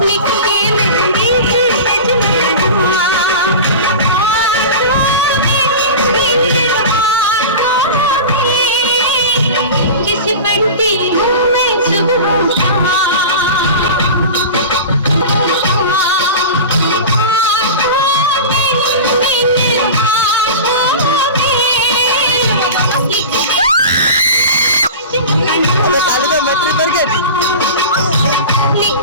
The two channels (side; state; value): both; inverted; correlation -0.31